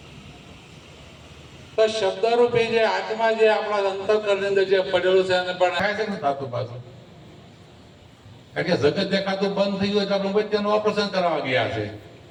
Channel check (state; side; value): identical; both; correlation 1.00